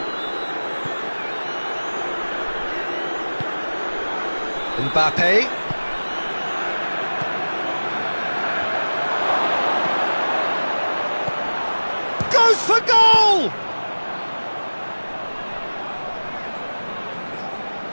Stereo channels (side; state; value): both; inverted; correlation -1.00